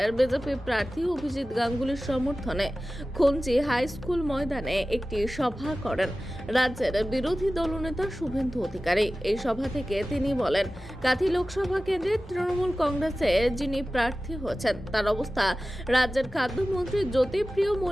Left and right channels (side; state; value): both; normal; correlation 0.96